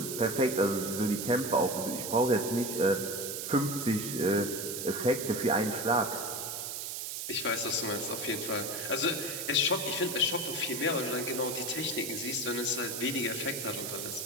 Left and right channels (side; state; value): right; noise; hiss, 5 dB below the sound